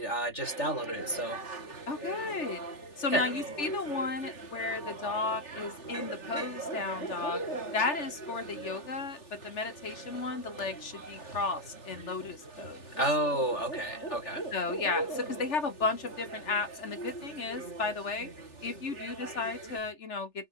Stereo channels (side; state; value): right; late; 3.4 ms